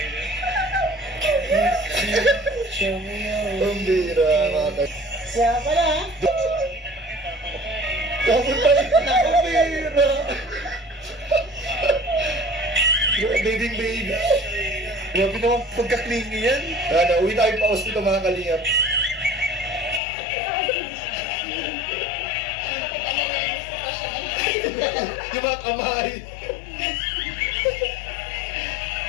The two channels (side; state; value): right; drops out; at 20.0 s